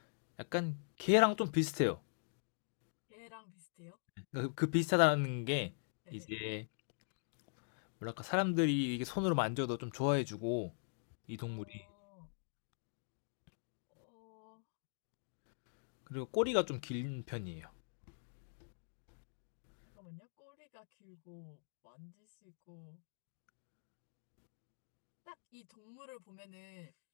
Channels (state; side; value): silent; right; digital silence